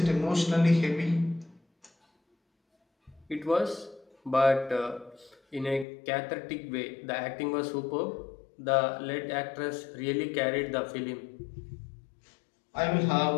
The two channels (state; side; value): drops out; right; at 5.9 s